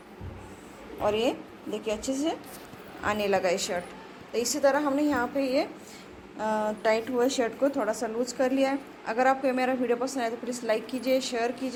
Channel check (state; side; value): identical; both; correlation 1.00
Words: और ये देखिए अच्छे से आने लगा ये शर्ट। तो इसी तरह हमने यहाँ पे ये टाइट हुए शर्ट को थोड़ा सा लूज कर लिया है। अगर आपको मेरा वीडियो पसंद आए तो प्लीज़ लाइक कीजिए, शेयर